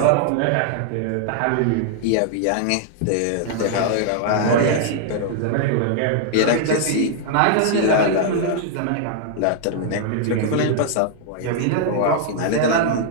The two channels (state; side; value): different; both; correlation -0.01